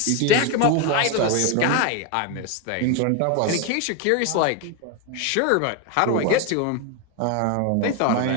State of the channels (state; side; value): different; both; correlation 0.02